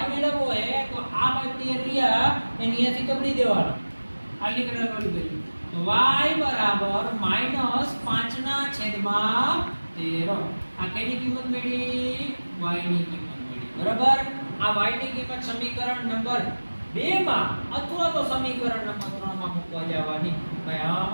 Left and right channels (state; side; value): inverted; both; correlation -1.00